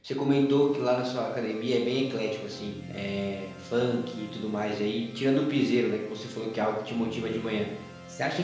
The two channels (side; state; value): both; identical; correlation 1.00